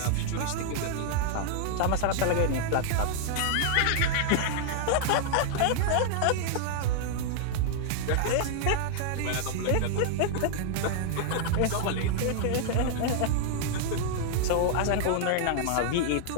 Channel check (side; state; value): both; different; correlation -0.01